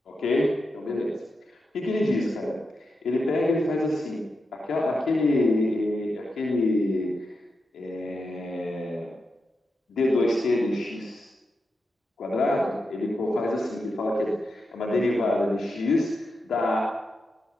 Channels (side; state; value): both; normal; correlation 0.87